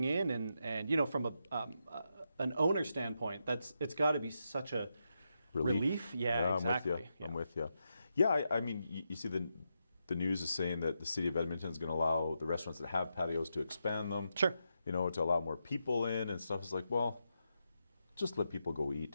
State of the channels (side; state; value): both; inverted; correlation -0.84